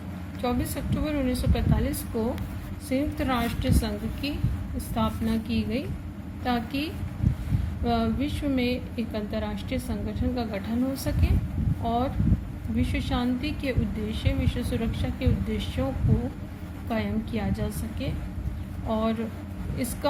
24 अक्टूबर 1945 को संयुक्त राष्ट्र संघ की स्थापना की गई ताकि विश्व में एक अंतर्राष्ट्रीय संगठन का गठन हो सके और विश्व शांति के उद्देश्य, विश्व सुरक्षा के उद्देश्यों को कायम किया जा सके। और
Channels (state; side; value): identical; both; correlation 1.00